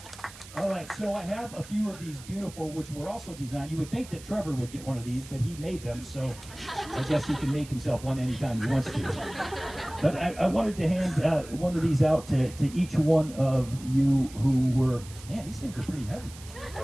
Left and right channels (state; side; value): noise; right; hiss, 18 dB below the sound